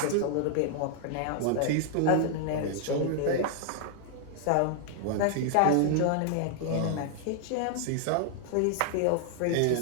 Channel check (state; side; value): different; both; correlation -0.01